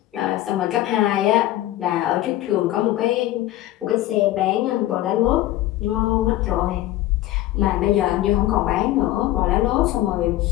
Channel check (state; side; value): quieter; right; 15.1 dB